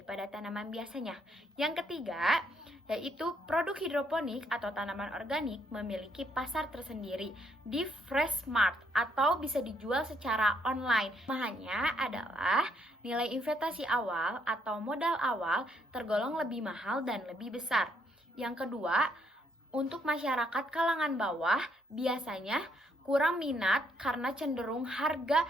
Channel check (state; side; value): normal; both; correlation 0.72